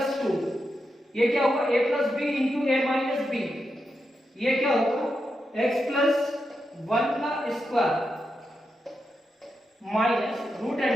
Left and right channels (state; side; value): normal; both; correlation 0.87